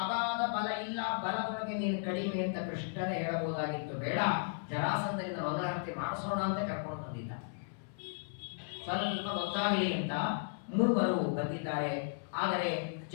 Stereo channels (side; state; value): right; silent; 54 dB below the other